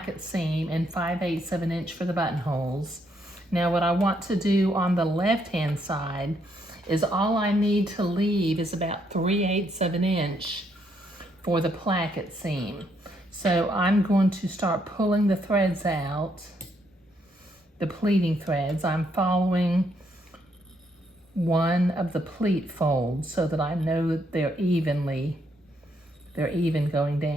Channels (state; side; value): normal; both; correlation 0.74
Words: seam, and 5/8 of an inch for the buttonholes. Now what I want to do on the left-hand side is all I need to leave is about 3/8 of an inch for the placket seam. So I'm going to start pulling the threads out, the pleating threads. I'm following one of the pleat folds so that I know that they're even going